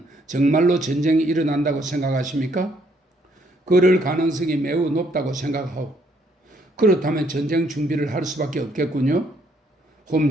정말로 전쟁이 일어난다고 생각하십니까? 그럴 가능성이 매우 높다고 생각하오. 그렇다면 전쟁 준비를 할 수밖에 없겠군요.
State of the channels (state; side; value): normal; both; correlation 0.69